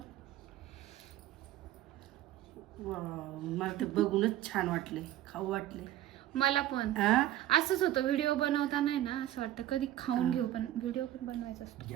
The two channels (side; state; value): left; quieter; 13.7 dB